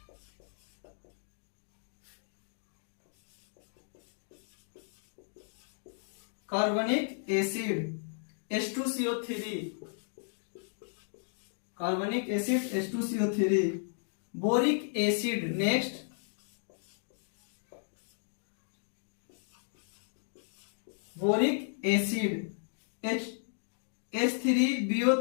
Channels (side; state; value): right; silent; digital silence